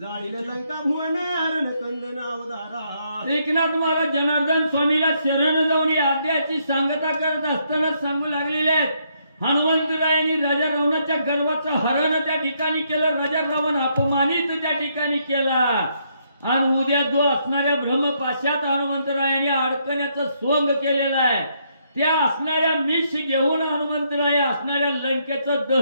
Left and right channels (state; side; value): inverted; both; correlation -0.74